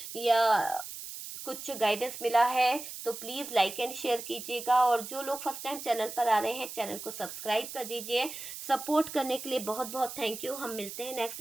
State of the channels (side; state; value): right; noise; hiss, 10 dB below the sound